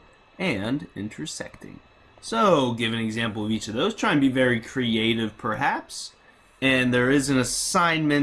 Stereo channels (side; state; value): both; identical; correlation 1.00